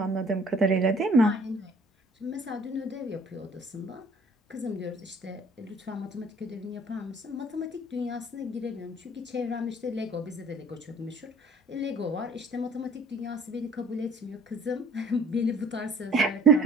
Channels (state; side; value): normal; both; correlation 0.51